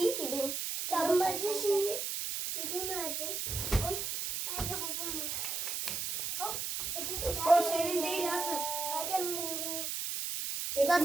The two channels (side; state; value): right; noise; hiss, 2 dB below the sound